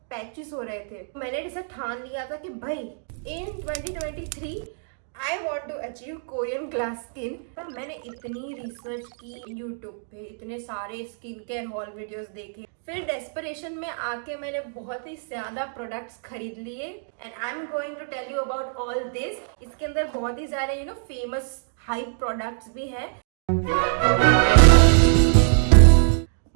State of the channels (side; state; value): left; silent; digital silence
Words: पैचेस हो रहे थे। मैंने इसे ठान लिया था कि भाई in 2023 I want to achieve Korean glass skin. तो मैंने इतनी रिसर्च की यूट्यूब पे, इतने सारे स्किन केयर हॉल वीडियोस देखे, फिर डेस्परेशन में आके मैंने बहुत ही ज्यादा प्रोडक्ट्स खरीद लिए and I am going to tell you about all this. इसके अंदर बहुत ही सारे फेमस हाइप प्रोडक्ट्स भी है।